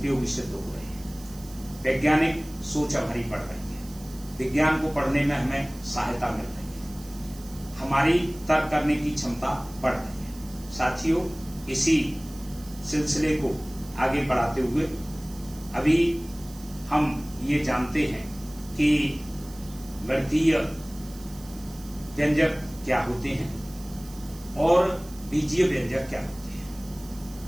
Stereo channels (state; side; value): noise; right; hiss, 20 dB below the sound